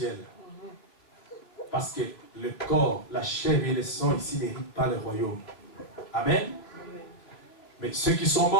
Parce que le corps, la chair et le sang ici n'héritent pas le royaume. Amen. Mais ceux qui sont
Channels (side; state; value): right; late; 3.0 ms